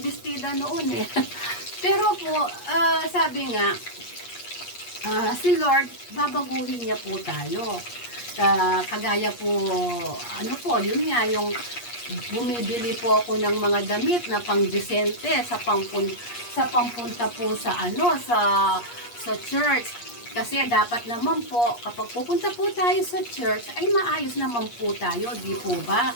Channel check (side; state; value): right; late; 8.4 ms